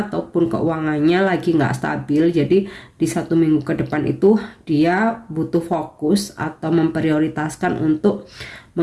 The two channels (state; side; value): identical; both; correlation 1.00